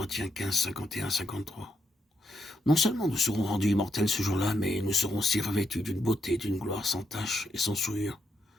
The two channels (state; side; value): normal; both; correlation 0.80